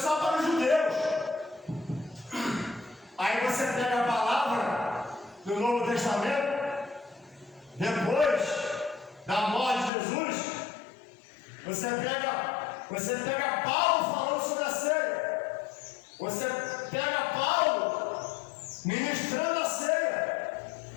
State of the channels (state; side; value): drops out; right; at 9.9 s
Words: para os judeus. Aí você pega a palavra do Novo Testamento, depois da morte de Jesus, você pega Paulo falando sobre a ceia, você pega Paulo ministrando a ceia,